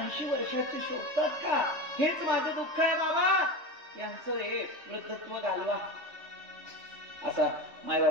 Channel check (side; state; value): left; late; 3.2 ms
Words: वर्षाची शोधतात का? हेच माझं दुःख आहे बाबा. यांचं हे वृद्धत्व घालवा. असा